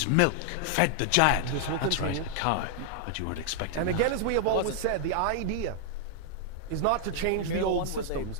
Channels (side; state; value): both; different; correlation 0.00